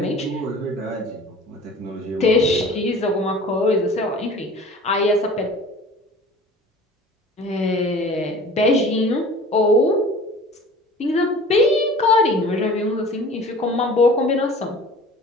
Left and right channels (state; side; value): normal; both; correlation 0.43